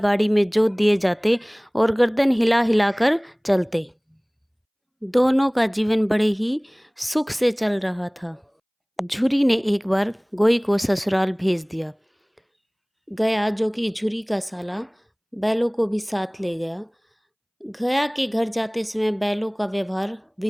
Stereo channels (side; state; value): both; identical; correlation 1.00